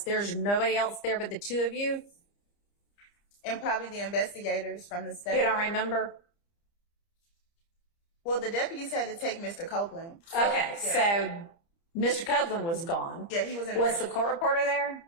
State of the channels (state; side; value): late; right; 30 ms